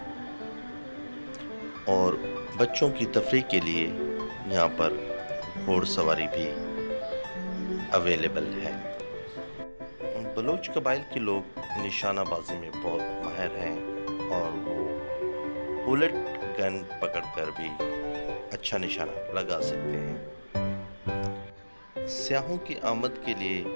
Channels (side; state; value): both; inverted; correlation -1.00